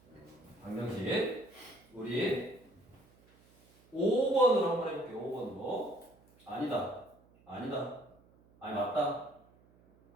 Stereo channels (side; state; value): right; noise; hum, 29 dB below the sound